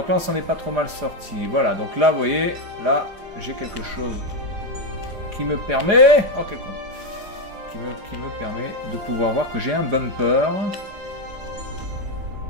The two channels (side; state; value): left; late; 4.9 ms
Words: là on s'en est pas trop mal sorti. Voilà, donc là vous voyez, là j'ai quelque chose qui me permet, oh quel con, qui me permet de pouvoir voir que j'ai un bumper.